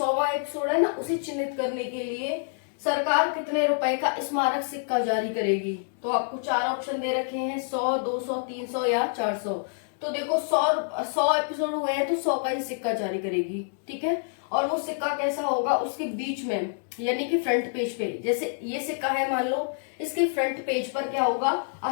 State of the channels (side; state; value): right; silent; digital silence